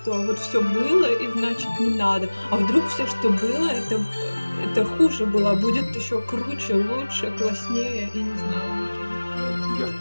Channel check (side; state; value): both; inverted; correlation -1.00